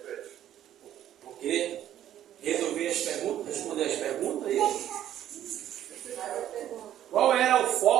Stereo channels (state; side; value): quieter; left; 11.5 dB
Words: Ok? Resolver as perguntas, responder as perguntas aí. Qual era o